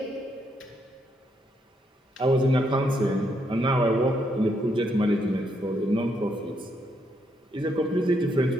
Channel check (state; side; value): normal; both; correlation 0.76